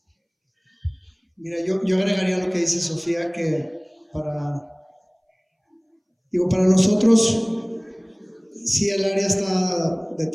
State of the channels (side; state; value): both; identical; correlation 1.00